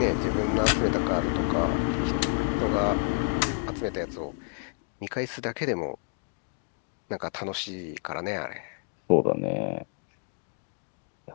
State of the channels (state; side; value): silent; right; 58 dB below the other